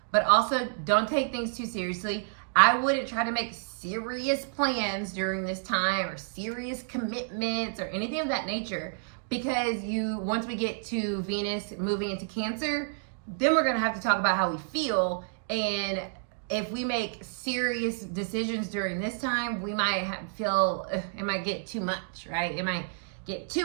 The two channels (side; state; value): left; silent; digital silence